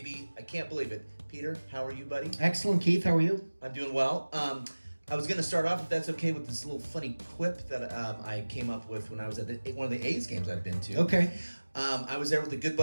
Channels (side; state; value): both; inverted; correlation -1.00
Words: I can't believe it. Peter, how are you, buddy? Excellent, Keith. How are you? I'm doing well. I was going to start off, if that's okay, with this little funny quip that I came up with when I was at one of the A's games I've been to. Okay. I was there with a good